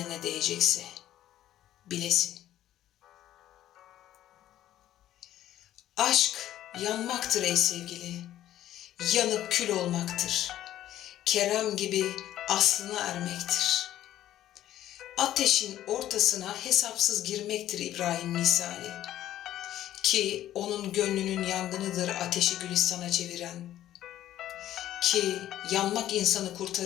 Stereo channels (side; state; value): right; quieter; 12.8 dB